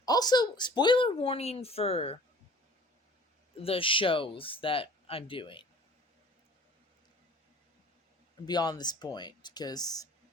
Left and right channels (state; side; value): normal; both; correlation 0.48